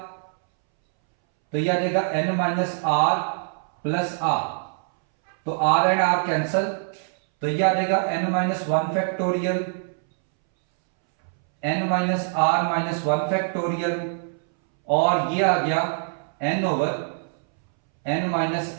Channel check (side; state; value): left; silent; 63 dB below the other